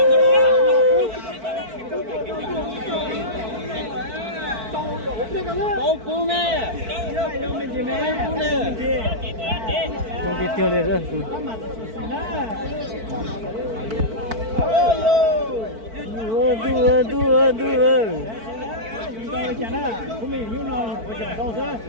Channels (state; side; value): late; left; 4.5 ms